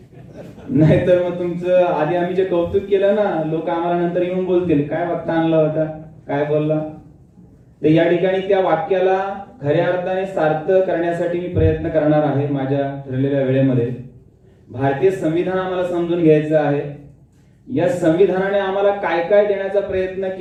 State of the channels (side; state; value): both; identical; correlation 1.00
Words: नाहीतर मग तुमचं आधी आम्ही जे कौतुक केलं ना, लोक आम्हाला नंतर येऊन बोलतील काय वक्ता आणला होता, काय बोलला. तर या ठिकाणी त्या वाक्याला खऱ्या अर्थाने सार्थ करण्यासाठी मी प्रयत्न करणार आहे माझ्या ठरलेल्या वेळेमध्ये. भारतीय संविधान आम्हाला समजून घ्यायचं आहे. या संविधानाने आम्हाला काय काय देण्याचा प्रयत्न